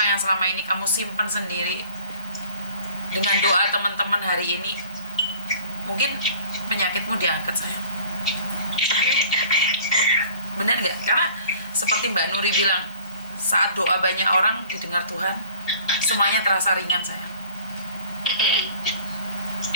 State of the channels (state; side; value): inverted; both; correlation -0.51